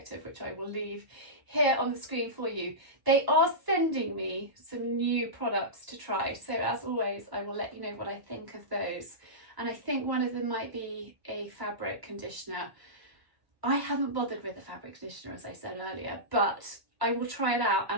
which I will leave here on the screen for you. They are sending me some new products to try. So as always, I will let you know what I think of those. And I think one of them might be a fabric conditioner. I haven't bothered with the fabric conditioner, as I said earlier, but I will try it out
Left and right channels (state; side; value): late; left; 1.0 ms